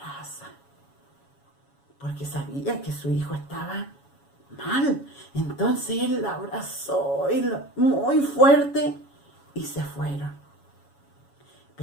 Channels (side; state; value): right; late; 7.2 ms